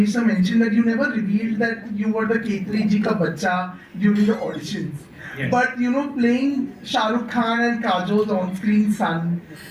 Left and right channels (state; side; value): identical; both; correlation 1.00